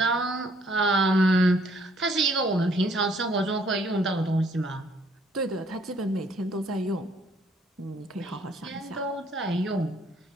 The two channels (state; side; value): normal; both; correlation 0.64